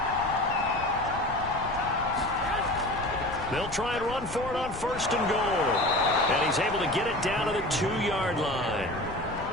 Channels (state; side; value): noise; left; rumble, 12 dB below the sound